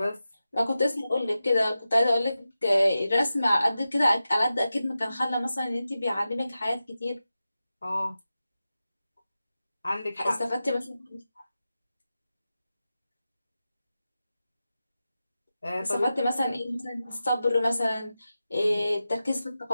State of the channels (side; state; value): both; inverted; correlation -0.92